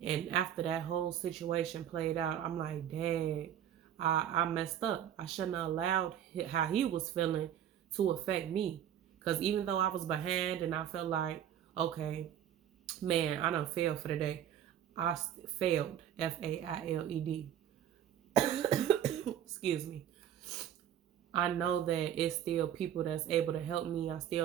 And after that whole situation played out, I'm like, Dad, I messed up. I shouldn't have allowed how he was feeling to affect me. Because even though I was behind and I felt like, okay, man, I done failed for the day. I failed, FAILED. Excuse me. I know that it's still people that's able to help me. I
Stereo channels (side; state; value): left; quieter; 10.3 dB